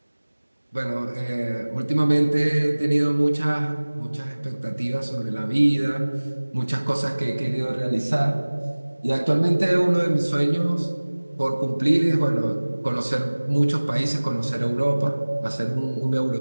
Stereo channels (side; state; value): both; inverted; correlation -1.00